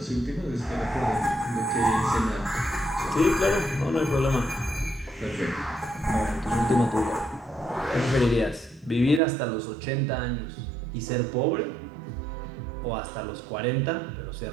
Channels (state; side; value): drops out; left; at 9.2 s